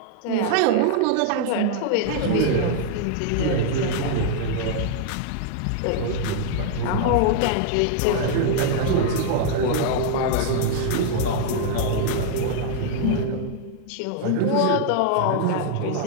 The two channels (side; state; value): both; different; correlation 0.00